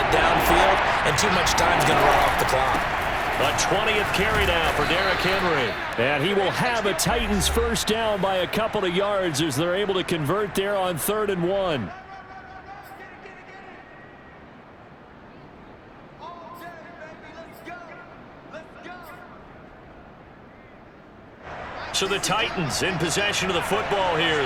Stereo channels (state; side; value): identical; both; correlation 1.00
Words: downfield, and too much time's going to run off the clock. A 20th carry now for Derrick Henry. And he will have a Titans first down by a couple of yards as they're able to convert there on 3rd and 1. So the Titans in possession of the football here